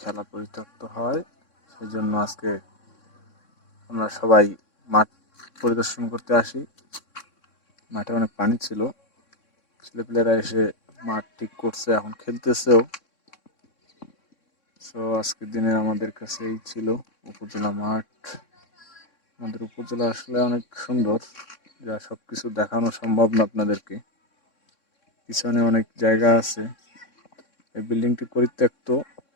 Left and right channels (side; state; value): right; late; 3.6 ms